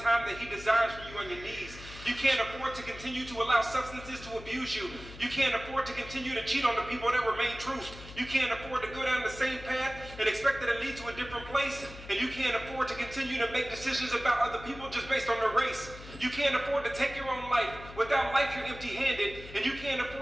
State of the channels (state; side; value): noise; left; hum, 15 dB below the sound